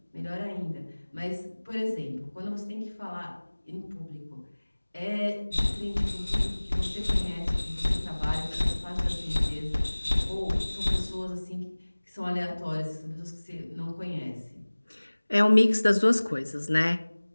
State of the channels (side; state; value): both; inverted; correlation -1.00